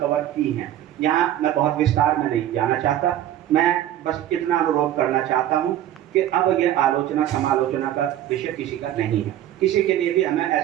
की हैं, यहाँ मैं बहुत विस्तार में नहीं जाना चाहता। मैं बस इतना अनुरोध करना चाहता हूँ कि अब यह आलोचना समालोचना का विषय किसी का नहीं है, किसी के लिए भी हमें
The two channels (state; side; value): quieter; left; 12.1 dB